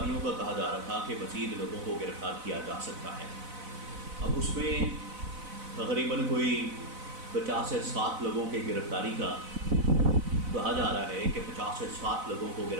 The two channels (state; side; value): late; left; 4.0 ms